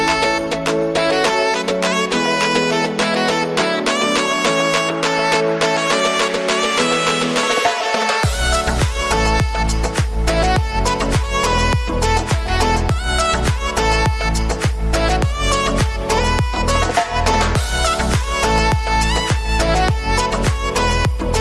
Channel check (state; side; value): identical; both; correlation 1.00